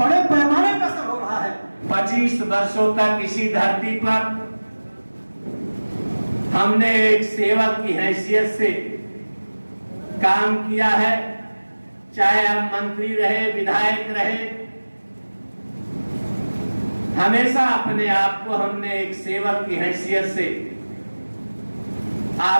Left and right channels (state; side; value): inverted; both; correlation -1.00